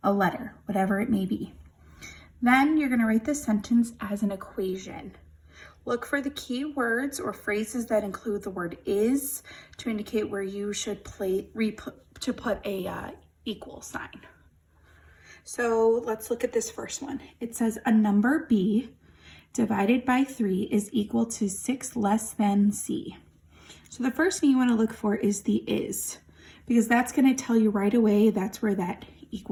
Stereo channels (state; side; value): identical; both; correlation 1.00